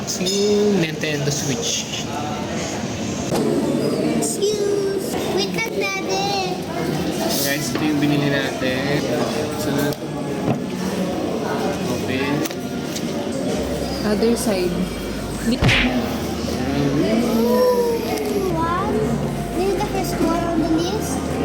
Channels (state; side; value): identical; both; correlation 1.00